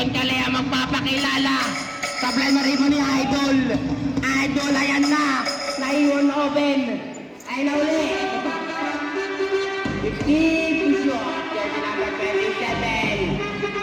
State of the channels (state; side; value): identical; both; correlation 1.00